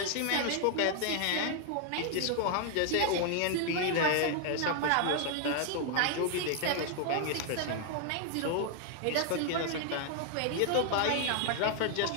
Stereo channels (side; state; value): both; different; correlation 0.00